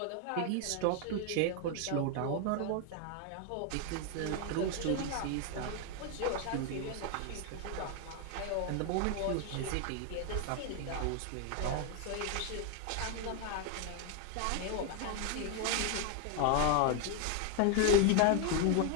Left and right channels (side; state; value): both; different; correlation 0.01